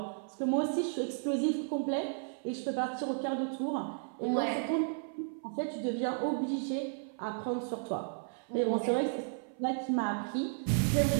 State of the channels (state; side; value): silent; left; 55 dB below the other